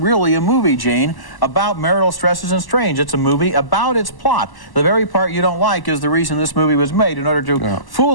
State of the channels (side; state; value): right; late; 1.1 ms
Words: really a movie, Gene, about marital stresses and strains. It's a movie about its plot. The very part you don't like is the reason this movie was made, in order to